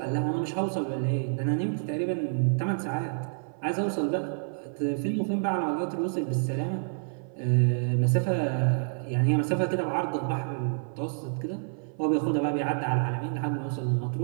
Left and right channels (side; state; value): left; silent; 56 dB below the other